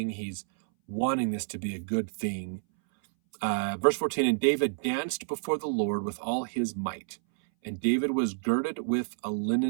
He's wanting this to be a good thing. Verse 14, and David danced before the Lord with all his might, and David was girded with a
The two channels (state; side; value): silent; left; 58 dB below the other